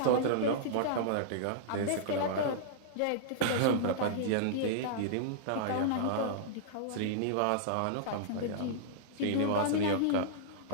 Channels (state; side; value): different; both; correlation -0.02